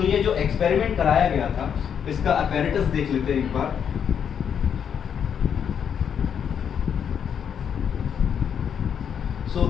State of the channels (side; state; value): right; quieter; 7.9 dB